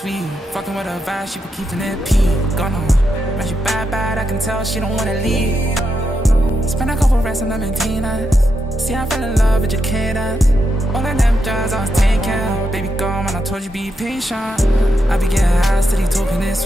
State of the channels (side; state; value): both; normal; correlation 0.84